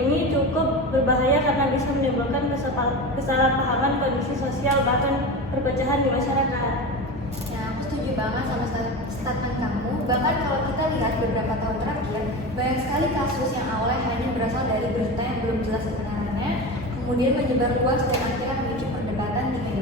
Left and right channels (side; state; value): both; normal; correlation 0.26